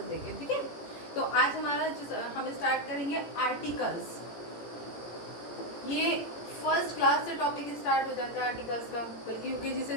देखें, ठीक है। तो आज हम स्टार्ट करेंगे आर्टिकल्स। ये फर्स्ट क्लास से टॉपिक स्टार्ट हो जाता है आर्टिकल्स का, बल्कि यूकेजी से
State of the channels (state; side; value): late; right; 18 ms